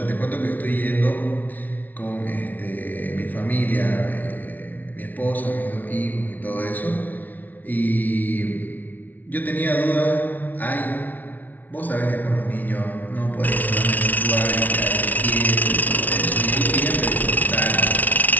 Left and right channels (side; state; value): right; late; 0.078 ms